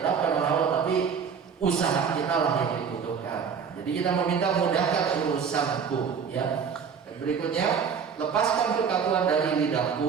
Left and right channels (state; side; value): quieter; left; 6.6 dB